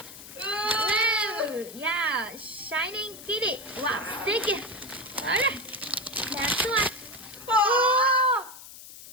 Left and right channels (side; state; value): left; noise; hiss, 16 dB below the sound